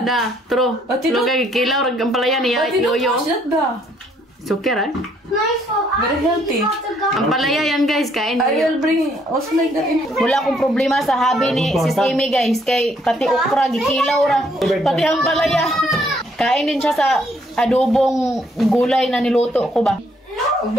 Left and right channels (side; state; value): both; normal; correlation 0.68